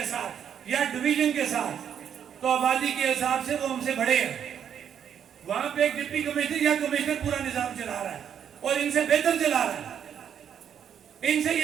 ساتھ یا ڈویژن کے ساتھ تو آبادی کے حساب سے وہ ہم سے بڑے ہیں. وہاں پہ ایک ڈپٹی کمشنر یا کمشنر پورا نظام چلا رہا ہے اور ان سے بہتر چلا رہا ہے. ان سے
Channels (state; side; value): quieter; left; 8.6 dB